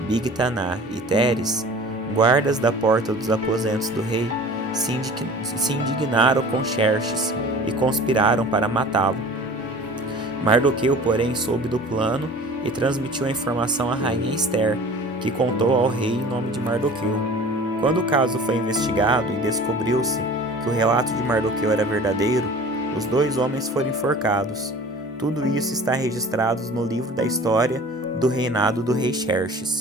Bigtaná e Teres, guardas da porta dos aposentos do rei, se indignaram com Xerxes e conspiraram para matá-lo. Mardoqueu, porém, soube do plano e transmitiu a informação à rainha Ester, que contou ao rei em nome de Mardoqueu. Quando o caso foi investigado e descobriu-se que o relato de Mardoqueu era verdadeiro, os 2 homens foram enforcados. Tudo isso está registrado no livro da história do reinado do rei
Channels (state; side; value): normal; both; correlation 0.43